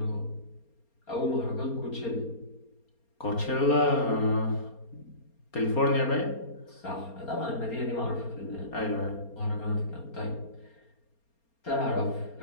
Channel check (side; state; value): right; late; 4.3 ms